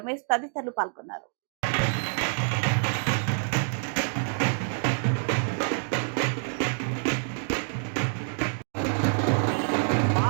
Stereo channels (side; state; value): left; silent; 60 dB below the other